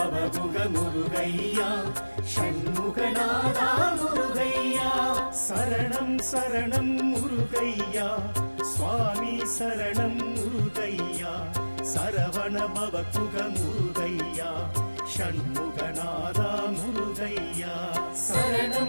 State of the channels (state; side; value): inverted; both; correlation -1.00